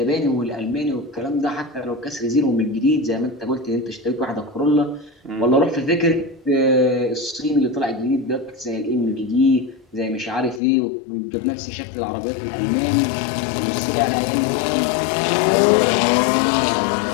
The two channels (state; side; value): drops out; right; at 10.6 s